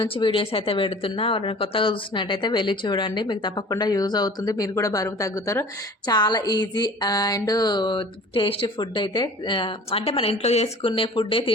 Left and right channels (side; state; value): both; normal; correlation 0.44